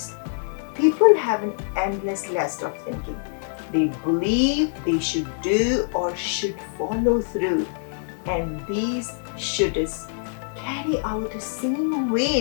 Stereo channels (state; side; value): silent; right; digital silence